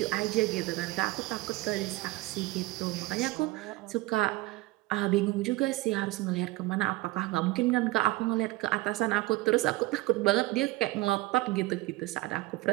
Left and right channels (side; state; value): left; quieter; 19.7 dB